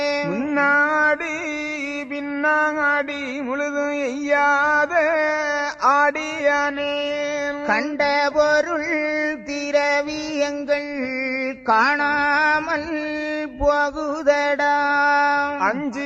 முன்னாடி பின்னாடி முழுதும் எய்யாத ஆடியானே. கண்ட பொருள் திரவியங்கள் காணாமல் போகுதடா.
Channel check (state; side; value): identical; both; correlation 1.00